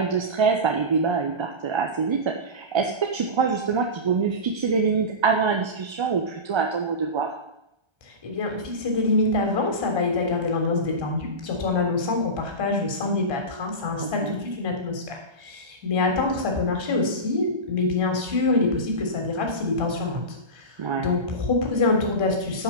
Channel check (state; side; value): late; left; 1.3 ms